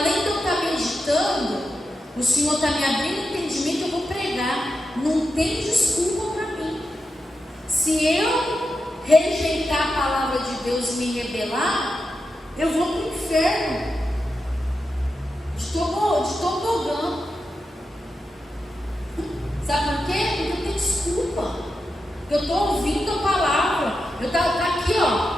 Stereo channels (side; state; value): both; normal; correlation 0.88